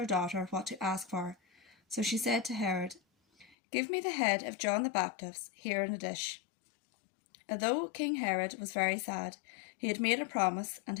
daughter what to ask for, so she said to Herod, "Give me the head of John the Baptist here in a dish." Although King Herod was very sad, he had made a promise, and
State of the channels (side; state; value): right; drops out; at 3.6 s